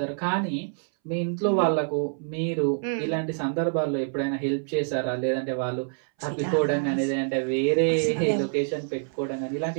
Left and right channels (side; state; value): left; silent; 61 dB below the other